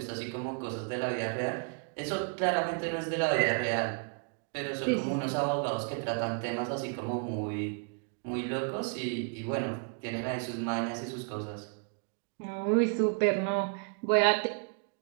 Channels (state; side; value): quieter; left; 38.5 dB